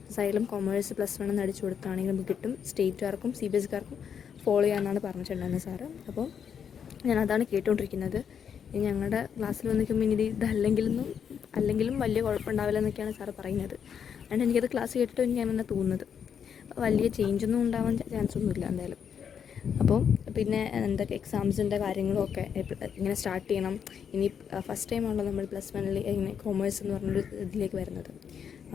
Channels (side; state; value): right; quieter; 7.7 dB